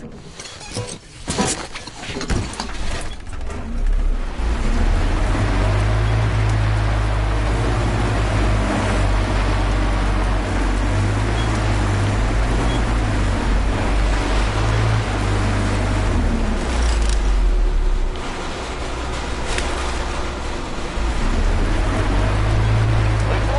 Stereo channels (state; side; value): identical; both; correlation 1.00